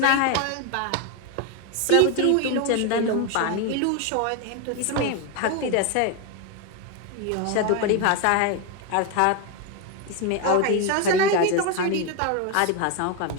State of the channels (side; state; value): both; different; correlation 0.01